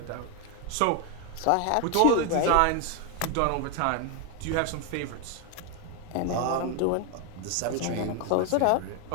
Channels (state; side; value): different; both; correlation 0.01